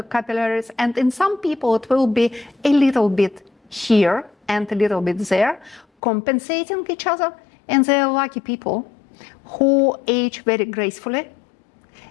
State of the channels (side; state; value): right; drops out; at 5.9 s